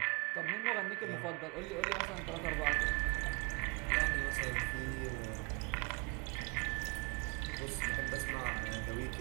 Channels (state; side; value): quieter; left; 30.1 dB